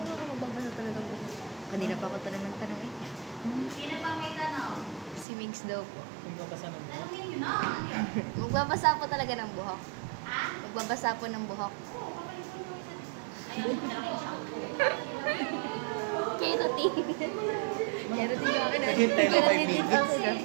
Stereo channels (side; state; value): left; drops out; at 5.2 s